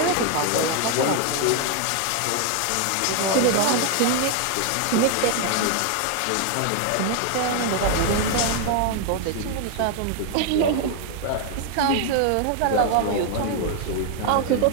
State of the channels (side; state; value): both; different; correlation 0.01